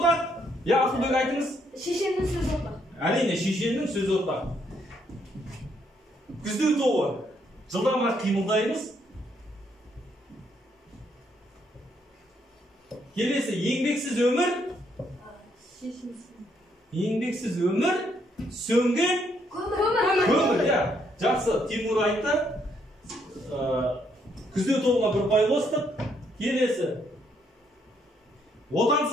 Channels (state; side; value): normal; both; correlation 0.72